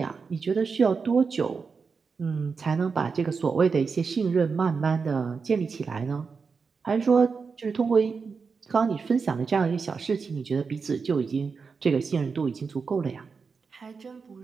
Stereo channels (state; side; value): quieter; left; 5.2 dB